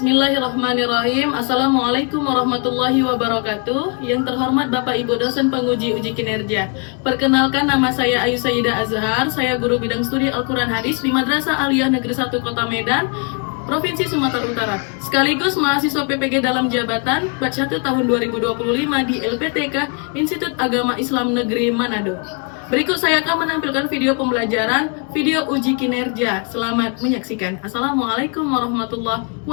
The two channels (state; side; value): quieter; right; 37.4 dB